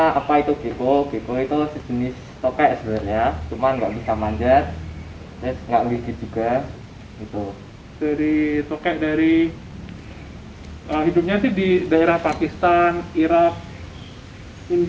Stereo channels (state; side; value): identical; both; correlation 1.00